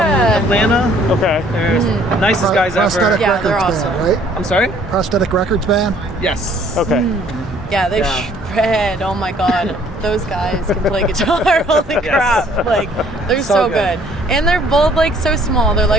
Okay. They're nicest guys ever. Prosthetic Yeah, they're Records awesome. band, right? I'm sorry? Prosthetic Records band. Yes. Okay. Yeah, they shred. Oh my god. Those guys can play guitar. Holy crap. Like, they're so good. And they're both like so small. They're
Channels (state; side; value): normal; both; correlation 0.59